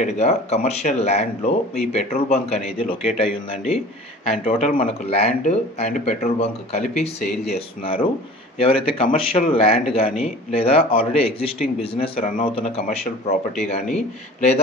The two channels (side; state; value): both; normal; correlation 0.42